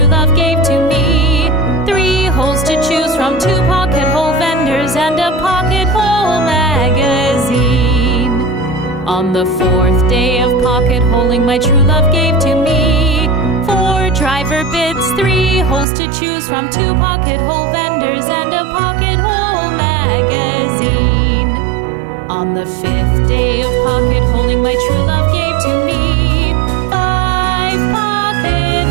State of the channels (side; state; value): left; drops out; at 15.9 s